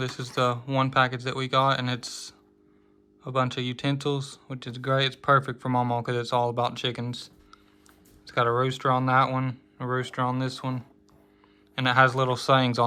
is the one package that we got, and it's a bunch of utensils, which is great. It's perfect for Mamaw because it's all about chickens. It's got a rooster on that one, a rooster on this one, and it has little sayings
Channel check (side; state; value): both; identical; correlation 1.00